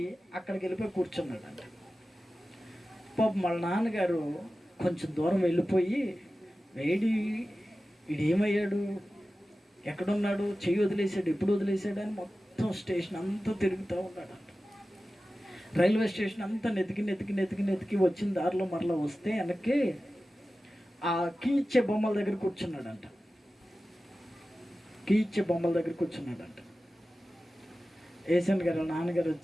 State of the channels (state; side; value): normal; both; correlation 0.95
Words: అక్కడికి వెళ్ళిపోయి కూర్చున్నాడంట. పాపం వాళ్ళ నాన్నగారు కొంచెం దూరం వెళ్ళిపోయి, వీడేమయ్యాడు, ఎక్కడున్నాడు, చెయ్యి వదిలేసాడు, ఎప్పుడు వదిలేసాడు అని మొత్తం స్టేషన్ అంతా తిరుగుతూ ఉన్నాడంట. రైల్వే స్టేషన్ అంతా నెతికి వచ్చిన దారిలో మరలా వస్తే వెనక్కి ఆ కీ ఇచ్చే బొమ్మల దగ్గర కూర్చున్నాడంట. కీ ఇచ్చే బొమ్మల దగ్గర కూర్చున్నాడంట. ఏసన్ గారు నాన్నగారు